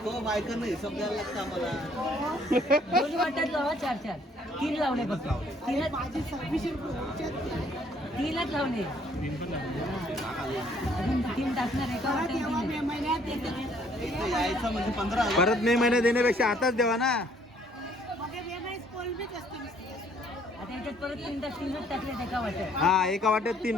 दोन वाट्यात लावा 4-4 3 लावणे फक्त. तीनच लावणे. अजून 3 टाकणार एका परत मे महिन्यात देण्यापेक्षा आताच द्यावा ना. आता याच्यात परत 3च टाकलेत एका वाट्यात. हा एका वाट्यात 3.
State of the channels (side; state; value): both; normal; correlation 0.63